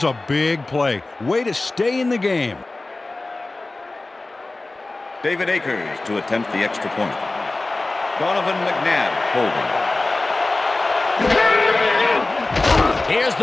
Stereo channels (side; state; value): right; quieter; 3.1 dB